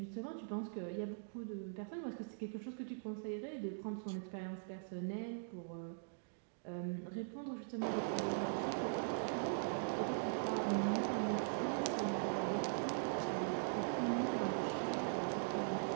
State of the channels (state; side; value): silent; left; digital silence